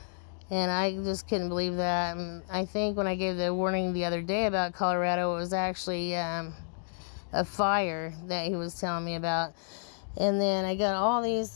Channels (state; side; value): silent; right; digital silence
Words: And I just couldn't believe that. And I think when I gave the warning the other day about Colorado, it was actually a fire that he was telling me about. And then I got all these,